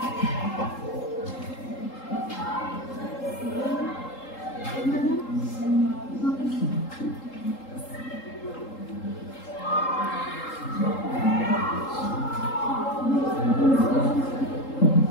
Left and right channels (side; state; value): right; late; 3.8 ms